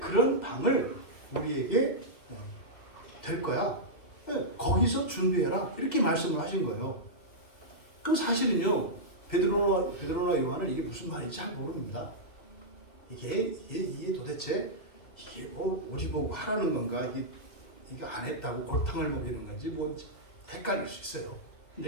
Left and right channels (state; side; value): late; right; 2.3 ms